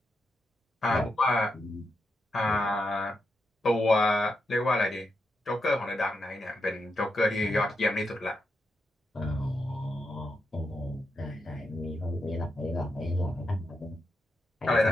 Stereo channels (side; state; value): both; normal; correlation 0.84